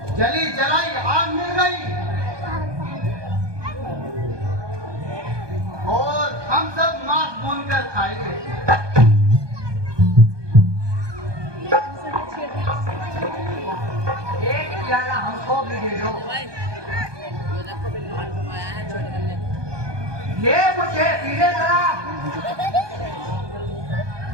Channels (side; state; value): left; late; 1.2 ms